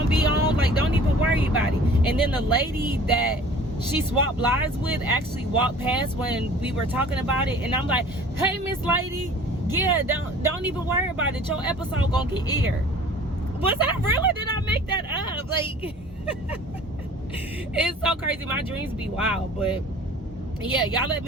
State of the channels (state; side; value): normal; both; correlation 0.47